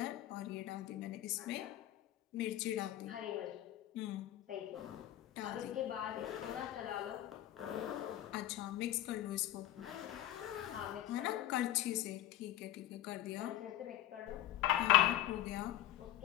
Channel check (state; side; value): quieter; right; 13.6 dB